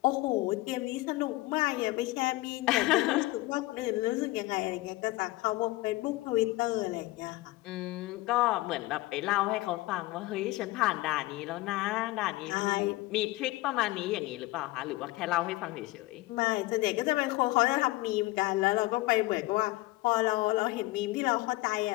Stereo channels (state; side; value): quieter; right; 19.6 dB